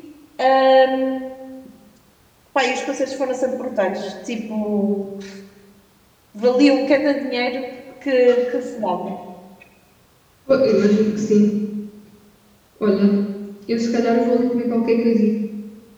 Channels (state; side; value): identical; both; correlation 1.00